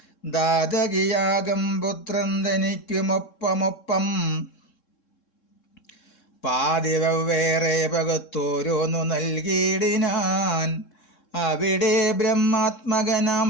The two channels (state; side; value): late; right; 3.7 ms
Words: ദാതകിയാകം പുത്രൻ തനിക്കുമൊപ്പമൊപ്പം പാതിവ്വേറെ പകത്തോരോന്നു നൽകിയിടിനാൻ. അവിടെ ബ്രഹ്മാത്മകനാം